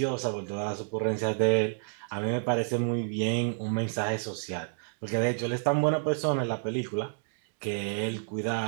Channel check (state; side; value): silent; left; digital silence